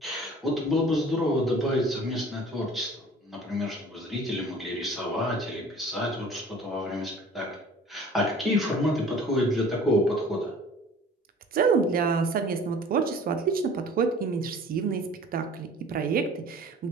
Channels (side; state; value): both; normal; correlation 0.47